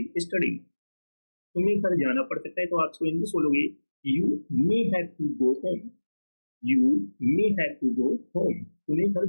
study. तुम्हें घर जाना पड़ सकता है तो आप इसको इंग्लिश बोलोगे you may have to go home, you may have to go home. तुम्हें घर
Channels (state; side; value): inverted; both; correlation -1.00